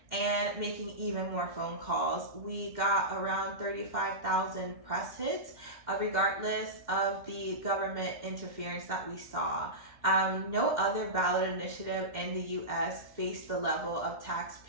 and making even more phone calls. We got around 35,000 press hits, regardless of the government interference that we saw. No other ballot initiative in the US faced the level of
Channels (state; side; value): late; left; 2.1 ms